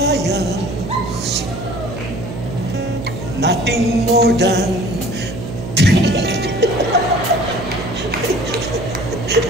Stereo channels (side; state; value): right; noise; hum, 8 dB below the sound